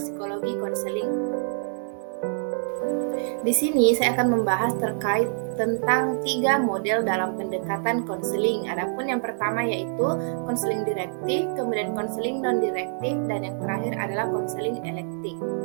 Psikologi Konseling. Di sini saya akan membahas terkait tentang 3 model dalam pendekatan konseling. Adapun yang pertama yaitu konseling direktif, kemudian konseling non-direktif, dan yang terakhir adalah konseling elektif.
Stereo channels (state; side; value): silent; left; digital silence